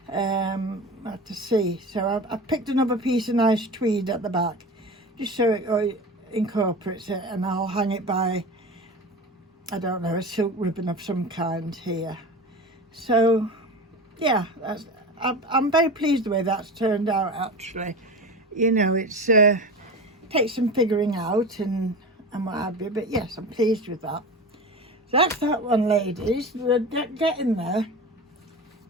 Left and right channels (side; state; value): both; normal; correlation 0.30